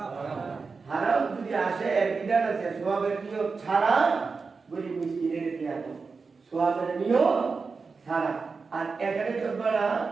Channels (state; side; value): quieter; left; 4.6 dB